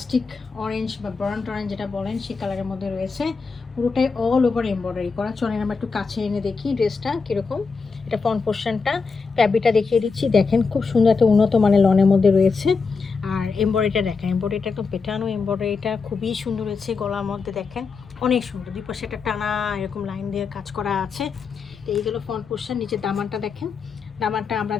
অরেঞ্জ বা বার্ন্ট অরেঞ্জ যেটা বলেন সেই কালারের মধ্যে রয়েছে। পুরোটাই অল ওভার এমব্রয়ডারি করা। চলেন আমরা একটু কাছে এনে দেখি ড্রেসটা কীরকম। এটা ফ্রন্ট পোর্শনটা, ফ্যাব্রিকটা দেখিয়ে দিচ্ছি। দেখেন খুব সুন্দর একটা উন্নত মানের লনের মধ্যে রয়েছে। আর এমব্রয়ডারিটা দেখেন, এমব্রয়ডারিটা একদম পেটানো এমব্রয়ডারিটা খুবই সুন্দর হয়েছে। গলার মধ্যে দেখেন অনেক সুন্দর, দুই পাশে একটা টানা এরকম লাইন দিয়ে কাজ করা আছে। তো এইগুলো ফ্রন্ট পোর্শন। নিচে দামানটা দেখেন, দামানটা আমরা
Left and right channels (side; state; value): right; quieter; 4.9 dB